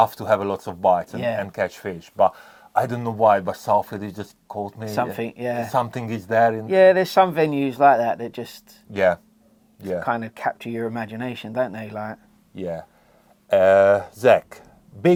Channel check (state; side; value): identical; both; correlation 1.00